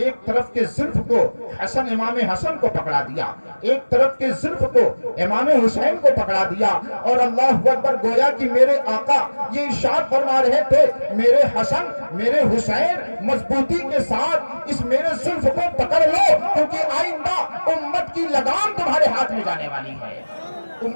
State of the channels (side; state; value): both; inverted; correlation -1.00